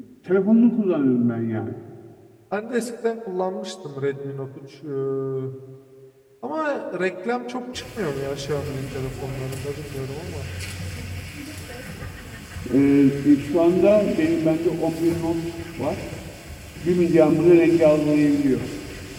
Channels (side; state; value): both; identical; correlation 1.00